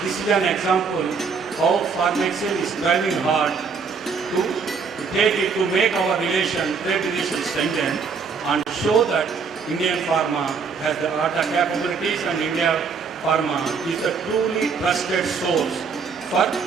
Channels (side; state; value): left; quieter; 5.5 dB